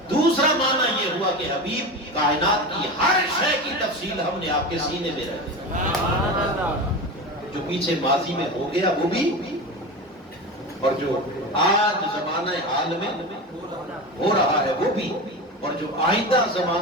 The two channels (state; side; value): normal; both; correlation 0.25